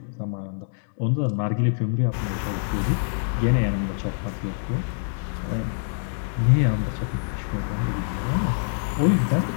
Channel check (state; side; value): silent; right; digital silence